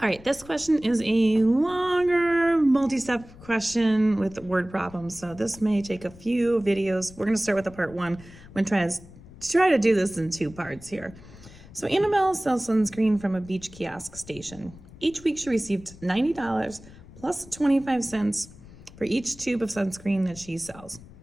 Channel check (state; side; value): noise; left; rumble, 20 dB below the sound